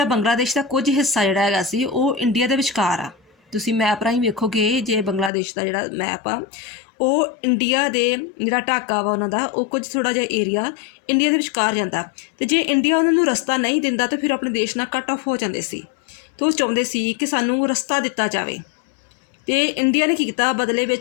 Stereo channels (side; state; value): right; drops out; at 5.3 s